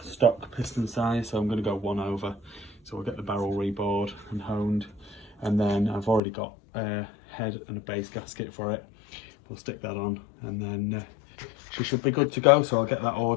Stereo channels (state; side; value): drops out; right; at 6.2 s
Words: stock piston size, so I'm going to go 1 over. So we'll get the barrel rebored and honed, and then I've already got a head and a base gasket for it. We'll stick that on, and then she should be good to go. So I'll get that